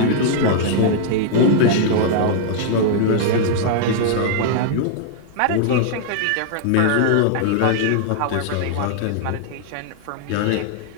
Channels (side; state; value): both; different; correlation -0.01